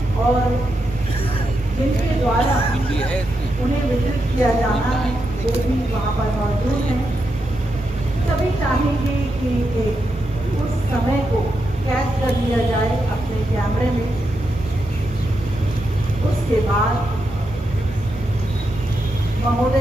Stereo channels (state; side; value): normal; both; correlation 0.85